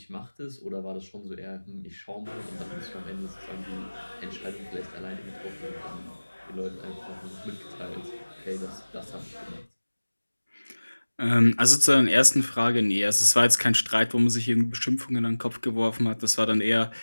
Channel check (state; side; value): inverted; both; correlation -1.00